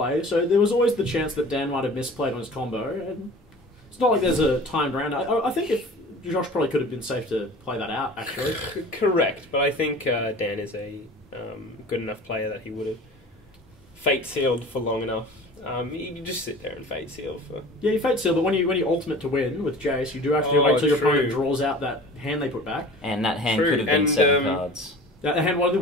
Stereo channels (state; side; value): normal; both; correlation 0.41